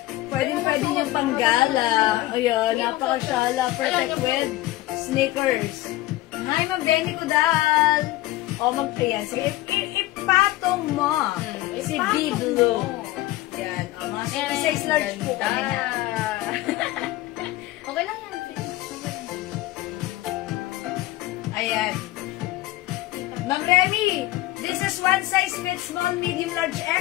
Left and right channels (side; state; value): right; quieter; 17.2 dB